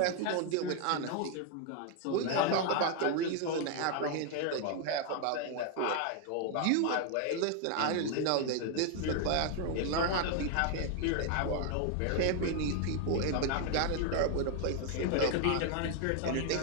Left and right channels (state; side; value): different; both; correlation 0.00